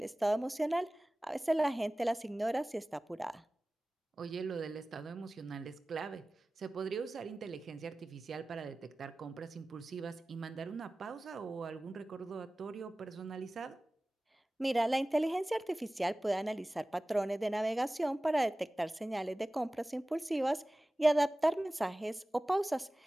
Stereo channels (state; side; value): normal; both; correlation 0.97